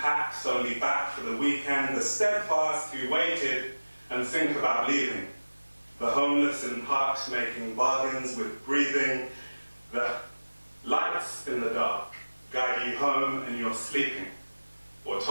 only back for the weekend, the steadfast who waited and think about leaving, the homeless in parks making bargains with breathing, the lights in the dark guide you home and you're sleeping, or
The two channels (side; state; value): both; inverted; correlation -1.00